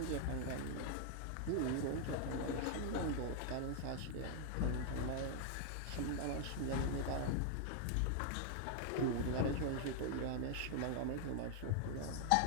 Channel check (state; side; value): different; both; correlation 0.00